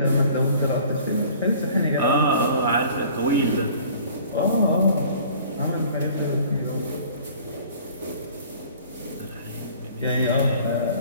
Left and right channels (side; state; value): both; inverted; correlation -0.50